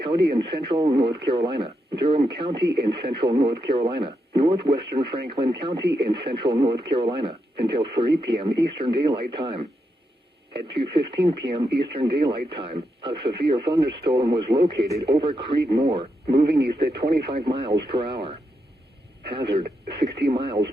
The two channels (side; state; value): both; normal; correlation 0.83